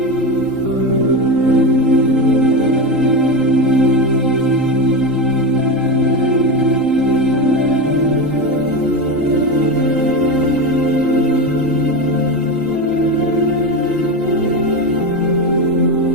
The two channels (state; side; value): late; left; 3.8 ms